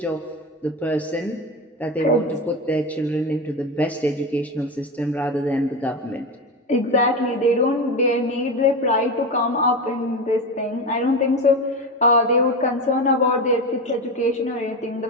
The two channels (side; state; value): both; normal; correlation 0.20